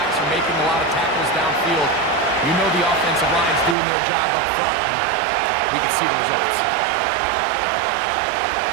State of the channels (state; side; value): drops out; left; at 3.8 s